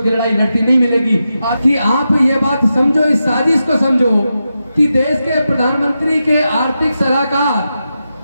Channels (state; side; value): inverted; both; correlation -0.89